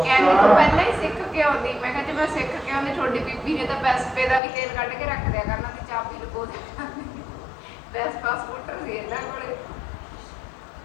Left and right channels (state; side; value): drops out; right; at 4.4 s